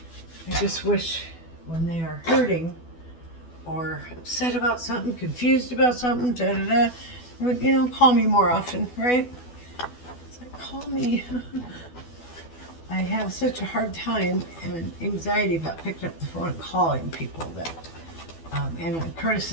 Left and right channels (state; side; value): late; right; 12 ms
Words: I just wish when they are hurting or upset about something, confused about something, would, call me more often, right? It's like, call me. I have such a hard time and anxiety about picking up the phone and calling people that, and Curtis